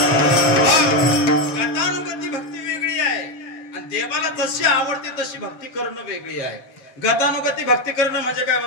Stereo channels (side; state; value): right; late; 7.3 ms